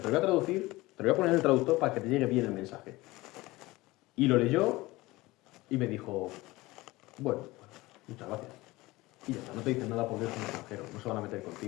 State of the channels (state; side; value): quieter; right; 20.2 dB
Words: lo voy a traducir, te lo voy a poner en el traductor para que te llegue bien el mensaje. Y lo leyó y me dijo, bueno, muchas gracias. Y ya está, no te dicen nada porque eres un extranjero, no se van a meter